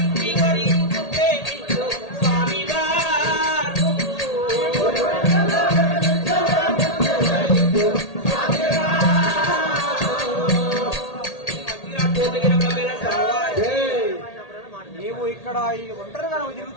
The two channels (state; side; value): late; right; 1.8 ms